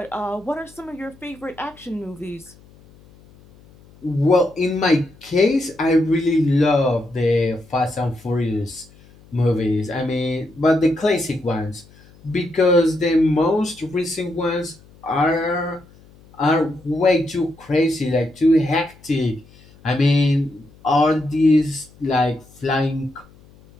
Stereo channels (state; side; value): noise; left; hum, 26 dB below the sound